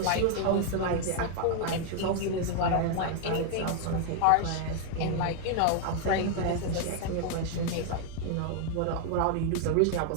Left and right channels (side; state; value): both; different; correlation 0.00